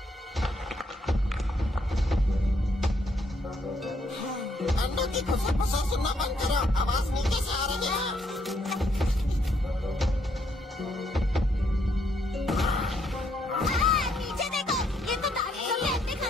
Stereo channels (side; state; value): both; normal; correlation 0.72